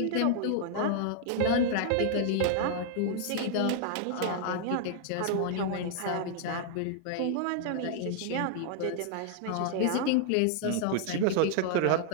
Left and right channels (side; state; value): both; different; correlation -0.01